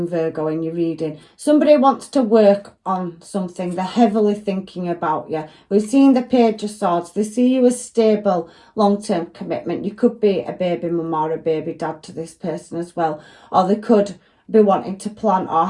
Virgo in your reading. Somebody wants to work on something. They're heavily thinking about you. We've seen the Page of Swords. They see you as stable, long-term commitment. You could be a baby mum or a baby dad to this person as well, or they could be wanting to plan or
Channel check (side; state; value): both; identical; correlation 1.00